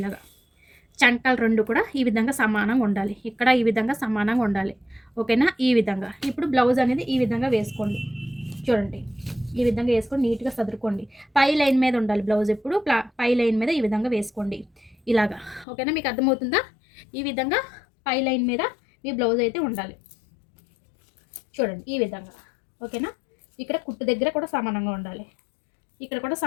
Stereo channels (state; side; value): drops out; right; at 15.7 s